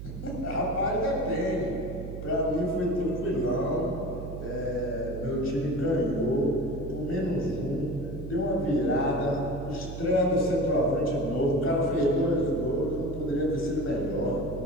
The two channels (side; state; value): right; noise; hum, 9 dB below the sound